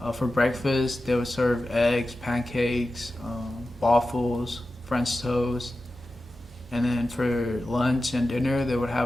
For breakfast, they would serve eggs, pancakes, waffles, French toast. And then for lunch and dinner, they would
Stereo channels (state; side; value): normal; both; correlation 0.93